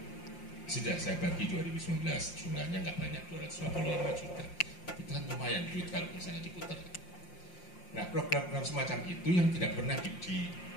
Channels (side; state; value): right; late; 5.7 ms